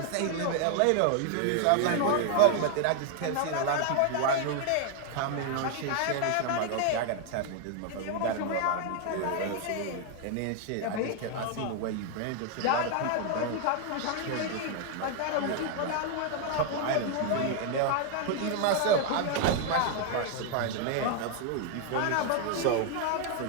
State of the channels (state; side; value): different; both; correlation 0.00